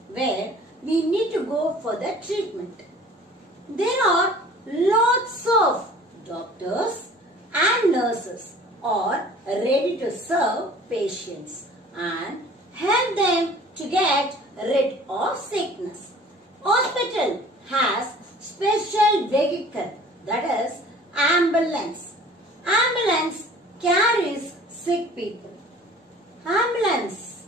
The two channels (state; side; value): normal; both; correlation 0.48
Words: where we need to go for the treatment. There are lots of doctors and nurses are ready to serve patients and help them to get rid of sickness. Hospital has special vehicle, that is ambulance. Ambulance carries sick people. Ambulance